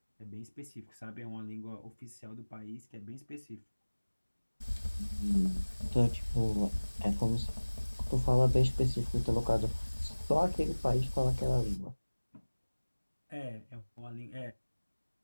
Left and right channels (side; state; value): both; inverted; correlation -1.00